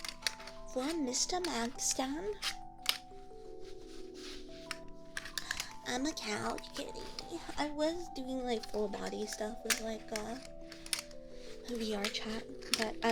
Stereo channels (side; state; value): both; identical; correlation 1.00